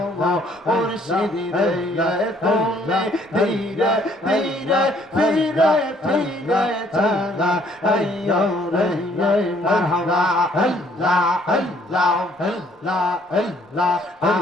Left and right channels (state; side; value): normal; both; correlation 0.63